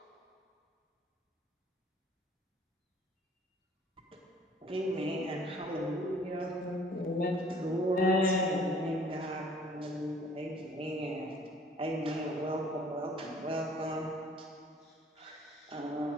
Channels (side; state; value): both; normal; correlation 0.55